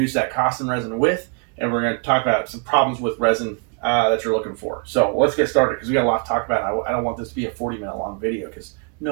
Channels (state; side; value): quieter; left; 35.7 dB